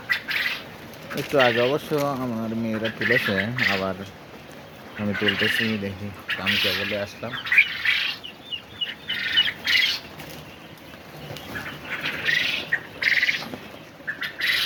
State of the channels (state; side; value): identical; both; correlation 1.00